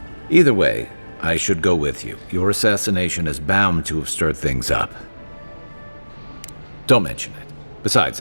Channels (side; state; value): both; inverted; correlation -1.00